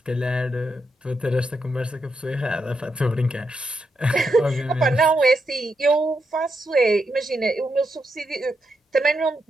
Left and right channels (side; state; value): both; normal; correlation 0.83